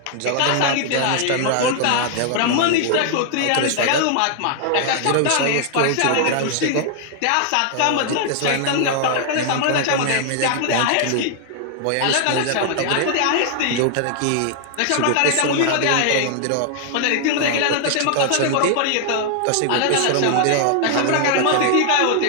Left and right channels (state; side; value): different; both; correlation 0.00